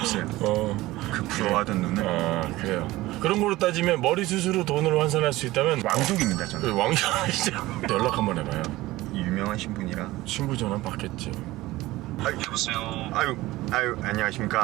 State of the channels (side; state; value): left; quieter; 18.1 dB